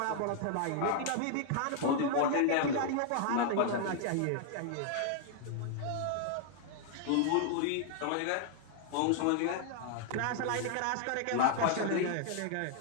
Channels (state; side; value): different; both; correlation -0.01